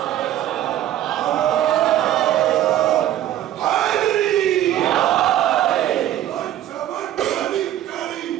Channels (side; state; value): left; quieter; 12.4 dB